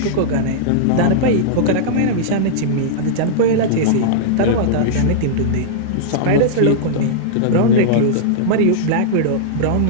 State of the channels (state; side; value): different; both; correlation -0.02